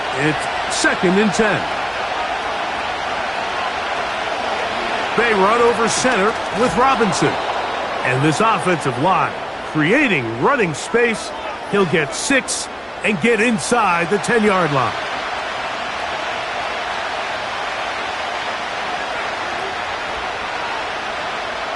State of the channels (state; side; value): identical; both; correlation 1.00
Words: It's 2nd and 10. They run over center with Robinson. And this offensive line creating running space. He'll get 6 and get inside the 10-yard line.